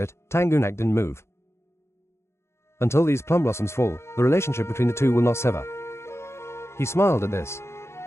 Tang Gunak didn't move. Until these plum blossoms fall, the relationship between the two will not sever. He smiled at this.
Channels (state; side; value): late; right; 0.13 ms